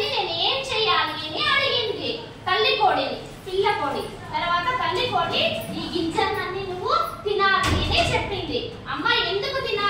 నేను ఏం చెయ్యాలి అని అడిగింది తల్లి కోడిని, పిల్ల కోడి. తర్వాత తల్లి కోడి ఈ గింజలన్నీ నువ్వు తినాలి అని చెప్పింది. అమ్మ ఎందుకు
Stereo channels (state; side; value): identical; both; correlation 1.00